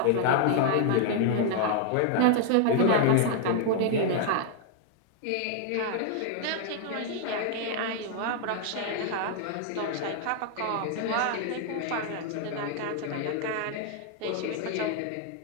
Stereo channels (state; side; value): different; both; correlation 0.00